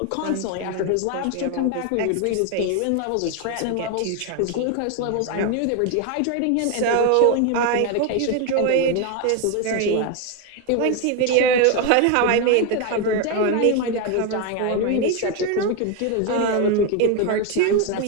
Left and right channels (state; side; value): different; both; correlation 0.02